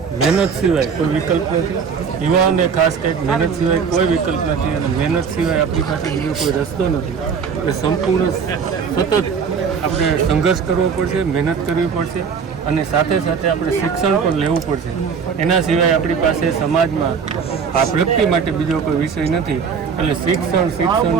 મહેનત સિવાય કોઈ વિકલ્પ નથી. યુવાઓને ખાસ કંઈક મહેનત સિવાય કોઈ વિકલ્પ નથી અને મહેનત સિવાય આપણી પાસે બીજો કોઈ રસ્તો નથી. એટલે સંપૂર્ણ સતત આપણે સંઘર્ષ કરવો પડશે, મહેનત કરવી પડશે અને સાથે સાથે આપણે શિક્ષણ પણ લેવું પડશે. એના સિવાય આપણી પાસે સમાજમાં આ પ્રગતિ માટે બીજો કોઈ વિષય નથી. એટલે શિક્ષણ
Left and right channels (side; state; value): left; quieter; 6.2 dB